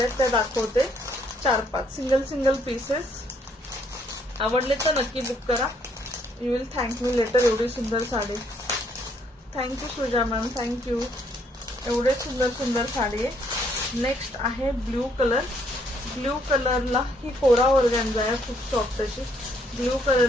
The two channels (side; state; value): both; normal; correlation 0.68